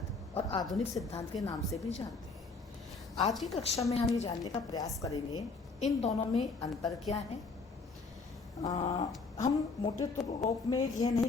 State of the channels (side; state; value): right; quieter; 4.1 dB